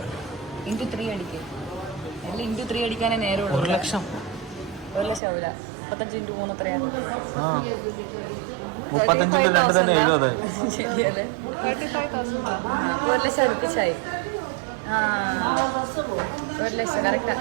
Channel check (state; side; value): drops out; left; at 5.2 s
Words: ഇൻറ്റു 3 അടിക്കേ. അല്ല ഇൻറ്റു 3 അടിക്കാനേ നേരമുള്ളൂ. 1 ലക്ഷം. 1 ലക്ഷം ആവില്ല. 35 ഇൻറ്റു 3 എത്രയാണ്? 35 × 2 തന്നെ 70. ശരിയല്ലേ? 1 ലക്ഷം അടുപ്പിച്ചായി. 1 ലക്ഷം കറക്റ്റാ.